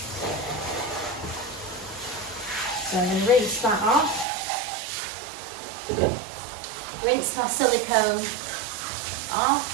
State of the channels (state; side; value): drops out; left; at 4.2 s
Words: So I'm going to rinse that off. Rinse my silicone off.